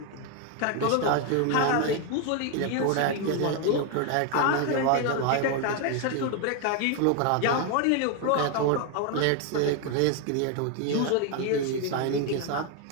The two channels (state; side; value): different; both; correlation 0.01